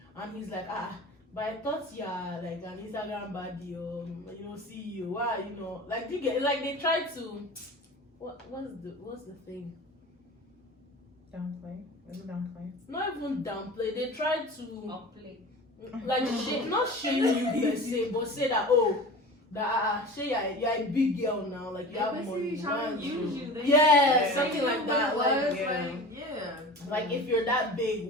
and he's like, But I thought like an Instagram baddie or CEO. Why like you get like they try to what's the thing? Downplay. Is it downplay? Not even downplay. They try to Upplay. like not shame you per se, but say that say you're a big girl now, like you have money. Trying to use you. Yeah, something like that. Like if you're that big,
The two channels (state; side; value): normal; both; correlation 0.35